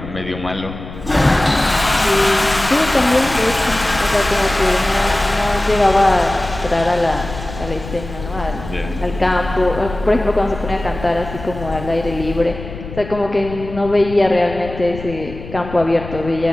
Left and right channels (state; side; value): noise; left; rumble, 12 dB below the sound